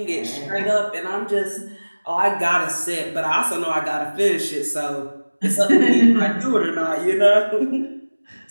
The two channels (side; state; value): both; inverted; correlation -1.00